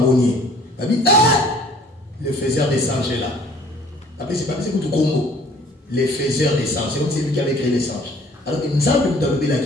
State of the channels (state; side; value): normal; both; correlation 0.54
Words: Le faiseur des singes est là. Après, c'est pas tout Congo. Les faiseurs des singes. C'est comme c'est lui qui avait créé les singes. Alors, il me semble que vous avez